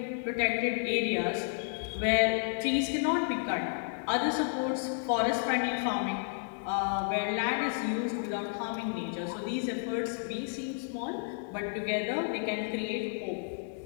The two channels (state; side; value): silent; right; digital silence